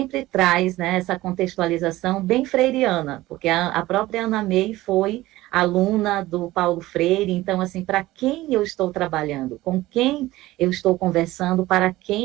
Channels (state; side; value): quieter; left; 17.4 dB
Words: traz, né, essa contextualização bem freiriana, porque a própria Anna May foi aluna do Paulo Freire. Então, assim, para quem eu estou trabalhando, com quem eu estou conversando, para